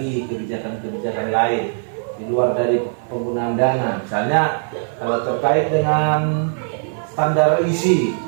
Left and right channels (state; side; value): silent; left; 56 dB below the other